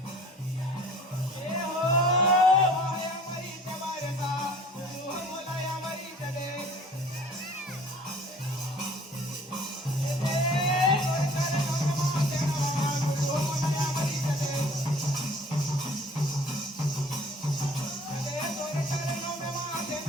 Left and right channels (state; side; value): normal; both; correlation 0.50